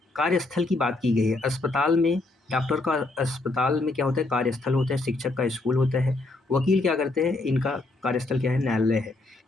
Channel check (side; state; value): right; quieter; 3.0 dB